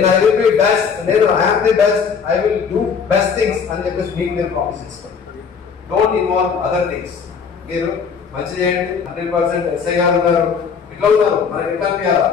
I will be best, I'm the best, I will do best things అని చెప్పేసి మీకు మీరు ప్రామిస్ చేసుకోండి. Don't involve other things. మీరు మంచి చేయండి. 100% ఎస్ఐ గారు ఉన్నారు, ఇట్లా ఉన్నారు, మనకి ఎట్లా అనిపించాలా?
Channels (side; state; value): right; quieter; 6.2 dB